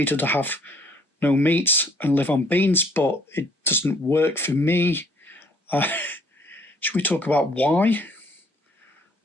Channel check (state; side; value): normal; both; correlation 0.61